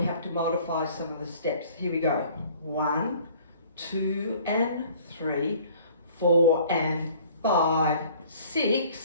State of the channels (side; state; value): both; inverted; correlation -0.52